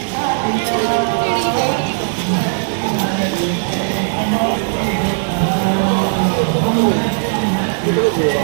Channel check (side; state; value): left; silent; digital silence